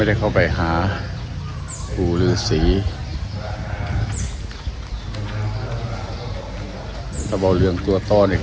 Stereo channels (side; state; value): both; identical; correlation 1.00